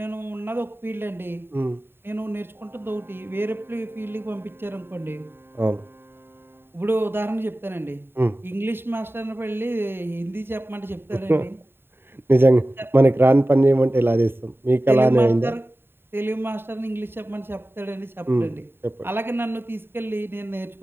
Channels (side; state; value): left; late; 0.11 ms